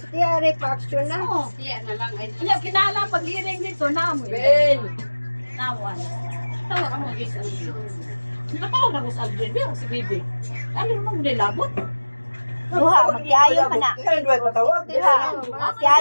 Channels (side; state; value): both; inverted; correlation -1.00